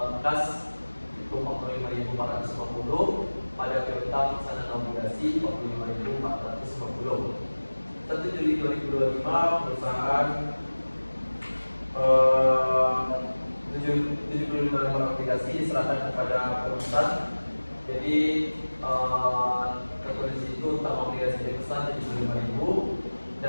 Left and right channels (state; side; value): inverted; both; correlation -1.00